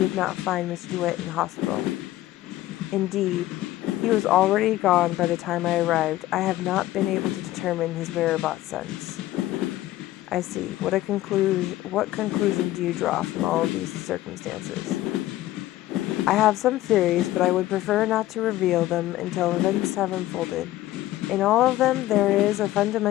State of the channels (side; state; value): right; quieter; 15.4 dB